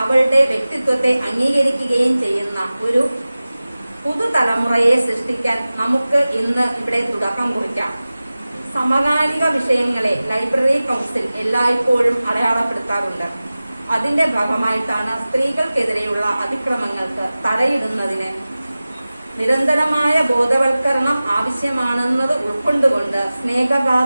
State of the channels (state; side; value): inverted; both; correlation -0.97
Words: അവളുടെ വ്യക്തിത്വത്തെ അംഗീകരിക്കുകയും ചെയ്യുന്ന ഒരു പുതുതലമുറയെ സൃഷ്ടിക്കാൻ നമുക്ക് ഇന്ന് ഇവിടെ തുടക്കം കുറിക്കാം. സമകാലിക വിഷയങ്ങളെ ലൈബ്രറി കൗൺസിൽ എല്ലായ്പ്പോഴും അടയാളപ്പെടുത്താറുണ്ട്. അതിന്റെ ഭാഗമായിട്ടാണ് സ്ത്രീകൾക്കെതിരെയുള്ള അതിക്രമങ്ങൾക്ക് തടയിടുന്നതിന് നിരന്തരമായ ബോധവൽക്കരണം ആവശ്യമാണെന്നത് ഉൾക്കൊണ്ടുകൊണ്ട്